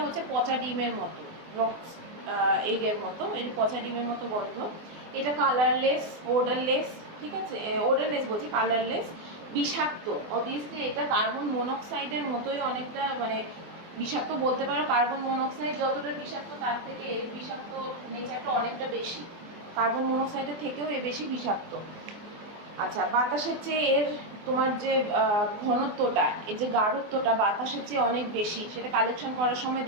হচ্ছে পচা ডিমের মতো, রক্স এগের মতো, এর পচা ডিমের মতো গন্ধ। এটা কালারলেস, ওডারলেস, ঠিক আছে, ওডারলেস বলছি, কালারলেস বিষাক্ত। অবভিয়াসলি এটা কার্বন মনোক্সাইডের মতোই অনেকটা, মানে বিষাক্ত বলতে পারো। কার্বন মনোক্সাইড যতটা বিষাক্ত তার থেকে এর বিষাক্ত নেচারটা অনেকটা বেশি, কার্বন মনোক্সাইডের থেকেও এ বেশি বিষাক্ত। আচ্ছা, বাতাসের চেয়ে এর তোমার যে ঘনত্বটা, এই যে গাঢ়ত্বটা বাতাসের চেয়ে অনেক বেশি। সেটা কালেকশন করার সময়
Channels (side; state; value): left; late; 24 ms